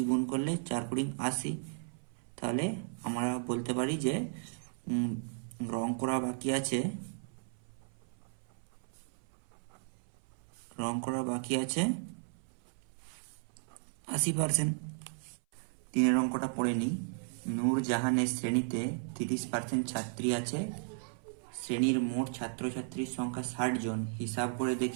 গুণ করলে 4 20 80। তাহলে আমরা বলতে পারি যে রং করা বাকি আছে 80%। 3 অঙ্কটা পড়ে নিই। নূরজাহানের শ্রেণীতে 30% ছাত্রী আছে, শ্রেণীর মোট ছাত্রছাত্রীর সংখ্যা 60 জন। হিসাব করে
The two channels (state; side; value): silent; left; 54 dB below the other